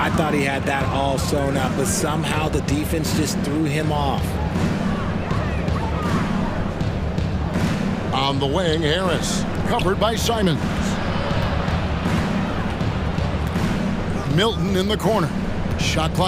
thought he had that all sewn up, but somehow the defense just threw him off. On the wing, Harris. Covered by Simons. Milton in the corner. Shot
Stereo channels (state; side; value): identical; both; correlation 1.00